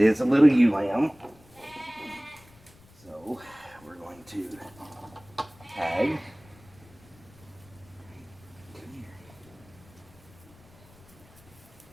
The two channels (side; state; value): left; noise; rumble, 25 dB below the sound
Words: is a little ewe lamb. to tag. Come here.